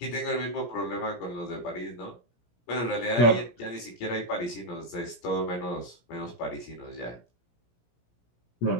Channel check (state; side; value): late; right; 17 ms